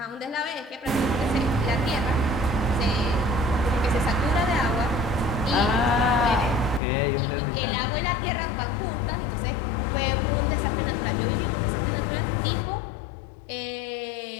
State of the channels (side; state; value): right; drops out; at 6.8 s